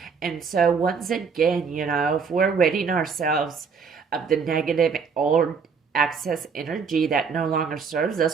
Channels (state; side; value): quieter; left; 5.7 dB